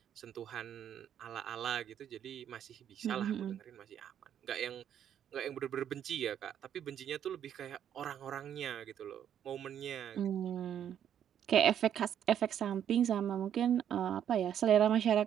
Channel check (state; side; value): quieter; left; 9.6 dB